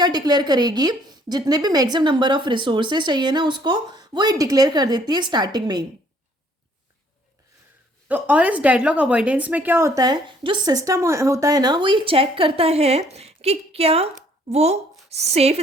डिक्लेयर करेगी, जितने भी मैक्सिमम नंबर ऑफ रिसोर्सेस चाहिए ना, उसको वो ये डिक्लेयर कर देती है स्टार्टिंग में ही। तो और इस डेडलॉक अवॉइडेंस में क्या होता है, जो सिस्टम होता है ना, वो ये चेक करता है कि क्या वो सेफ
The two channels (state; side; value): normal; both; correlation 0.62